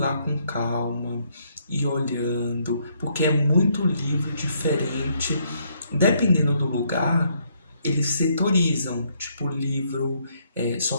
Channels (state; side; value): inverted; both; correlation -0.71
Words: com calma e olhando, porque é muito livro diferente, dependendo do lugar, eles setorizam, tipo livro só